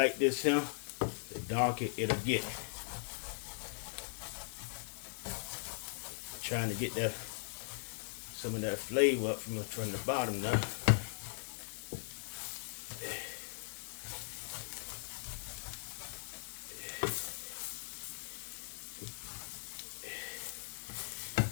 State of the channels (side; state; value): right; silent; digital silence